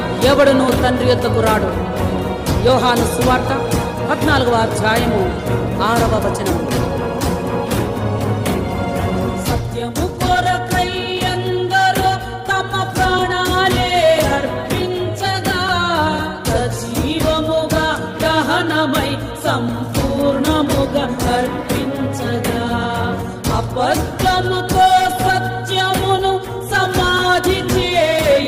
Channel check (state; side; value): identical; both; correlation 1.00